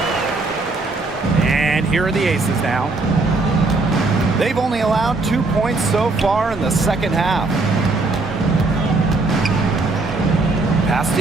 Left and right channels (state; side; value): quieter; left; 3.4 dB